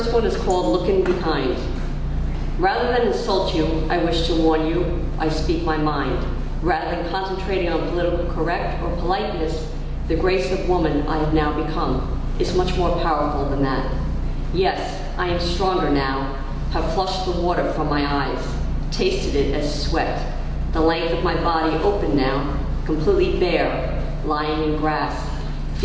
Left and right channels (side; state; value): both; identical; correlation 1.00